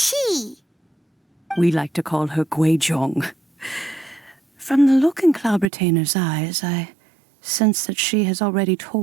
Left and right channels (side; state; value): left; drops out; at 5.7 s